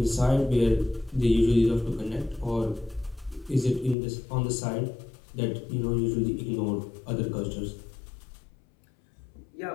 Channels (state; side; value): drops out; right; at 4.0 s